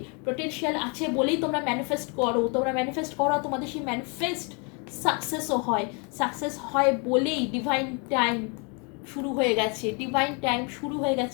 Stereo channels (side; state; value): right; quieter; 33.9 dB